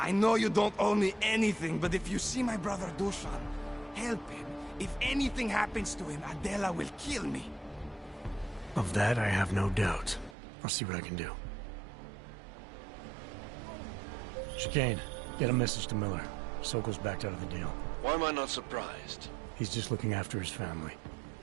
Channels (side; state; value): left; drops out; at 10.4 s